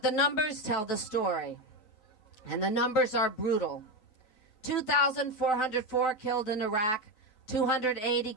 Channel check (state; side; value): late; right; 3.9 ms